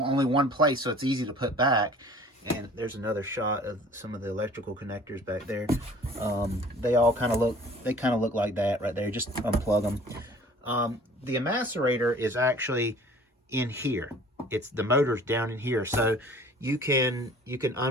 one place, so it's easy to put back. And there's another shot of some of the electrical connectors back there. They all kind of look like that right there. Just unplug them. The macerator is actually in here. The motor's down in here, so you can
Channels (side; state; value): both; normal; correlation 0.49